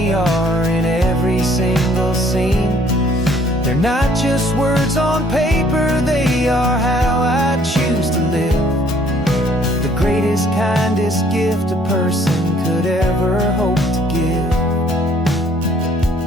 are in every single scene. They're not just words on paper, they are how I choose to live. The greatest, kindest gift a person could ever hope to give.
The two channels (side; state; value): both; normal; correlation 0.61